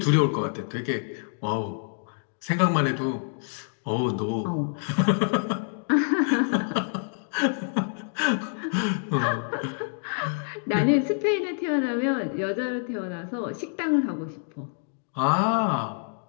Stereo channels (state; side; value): silent; right; digital silence